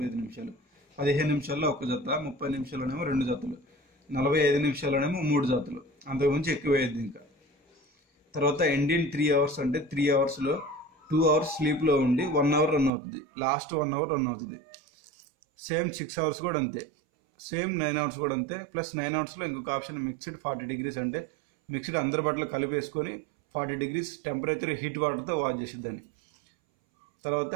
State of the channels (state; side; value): drops out; left; at 12.9 s